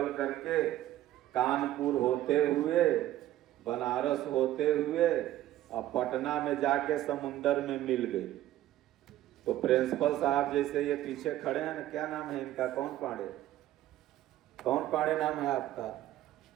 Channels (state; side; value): quieter; left; 14.0 dB